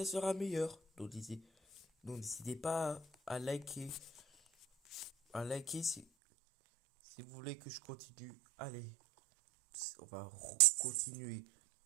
sera meilleur. Donc n'hésitez pas à liker si vous voulez que je continue. Allez, on va continuer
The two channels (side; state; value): left; drops out; at 6.1 s